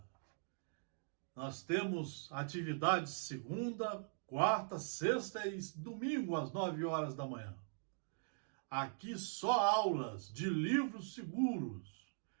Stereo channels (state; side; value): silent; left; digital silence